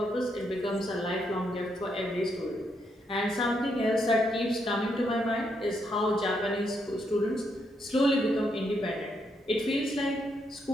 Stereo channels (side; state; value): both; normal; correlation 0.78